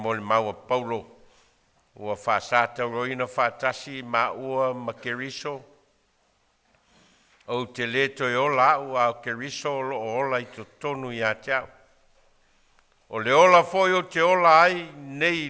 maua Paulo, ua whaasata roina whaatasi ma ua ma keriso. O te leto I ola ua o keriso o ola I to tonu I a teau. O le ola foi o te ola ai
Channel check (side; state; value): both; identical; correlation 1.00